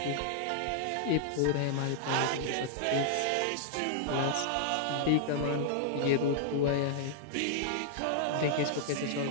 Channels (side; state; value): both; different; correlation -0.01